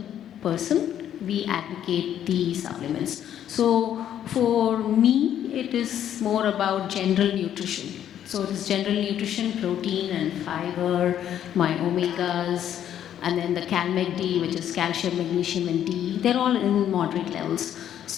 person, we advocate the supplements. So for me, it is more about general nutrition. So it is general nutrition, protein and fiber, my omegas, and then the CalMag-D, which is calcium, magnesium, and D. They're all in moderate levels.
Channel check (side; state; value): right; quieter; 10.4 dB